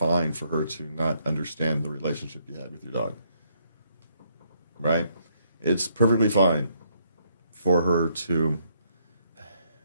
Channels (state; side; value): inverted; both; correlation -0.71